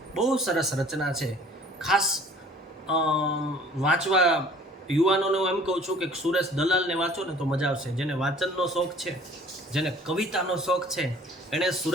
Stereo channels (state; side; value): normal; both; correlation 0.52